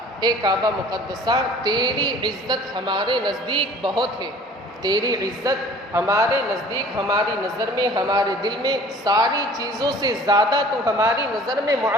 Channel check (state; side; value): normal; both; correlation 0.49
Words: کعبہ مقدسہ، تیری عزت ہمارے نزدیک بہت ہے، تیری عزت ہمارے نزدیک، ہماری نظر میں، ہمارے دل میں ساری چیزوں سے زیادہ تو ہماری نظر میں